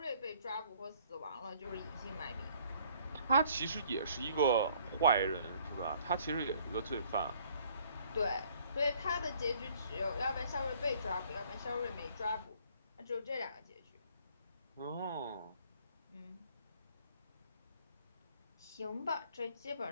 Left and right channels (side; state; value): both; inverted; correlation -0.60